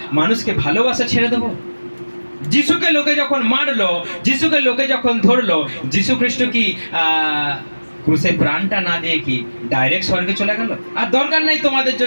মানুষকে ভালোবাসা ছেড়ে দেবো? যিশুকে লোকে যখন মারলো, যিশুকে লোকে যখন ধরলো, যিশু খ্রিস্ট কি ক্রুশে প্রাণটা না দিয়ে কি ডাইরেক্ট স্বর্গে চলে গেল? আর দরকার নাই তোমাদের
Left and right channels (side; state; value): both; inverted; correlation -1.00